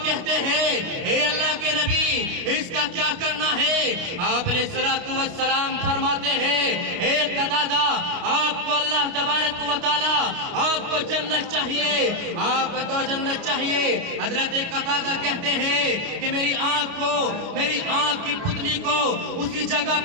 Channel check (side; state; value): left; late; 29 ms